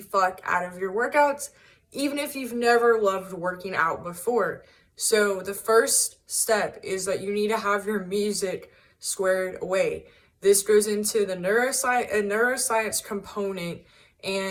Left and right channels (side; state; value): both; identical; correlation 1.00